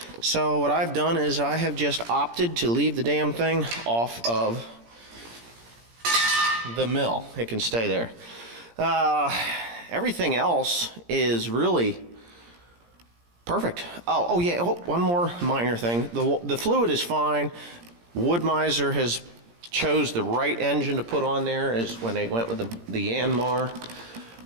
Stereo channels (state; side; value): late; left; 17 ms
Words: So what I've done is I have just opted to leave the damn thing off of the mill. It can stay there. Everything else is really perfect. Oh yeah, one more minor thing. The fluid is fine. Wood-Mizer has chose the right engine to put on there is when they went with the Yanmar,